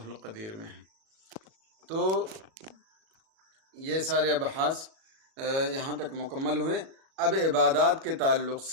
القدیر میں ہے۔ تو یہ سارے ابحاث یہاں تک مکمل ہوئے۔ اب عبادات کے تعلق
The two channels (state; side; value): late; left; 37 ms